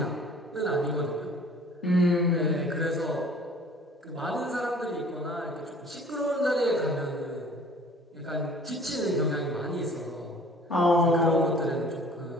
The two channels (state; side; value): normal; both; correlation 0.51